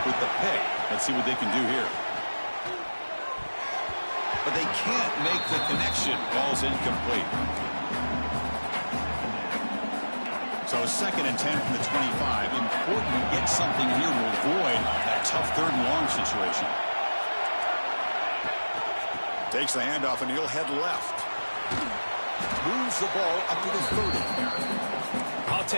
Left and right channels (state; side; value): inverted; both; correlation -1.00